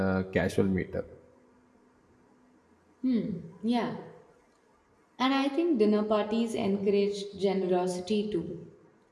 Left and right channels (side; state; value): both; identical; correlation 1.00